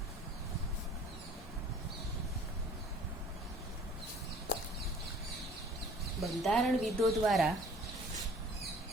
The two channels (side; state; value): both; normal; correlation 0.52